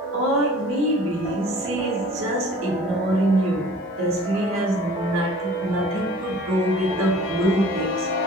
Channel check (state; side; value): normal; both; correlation 0.47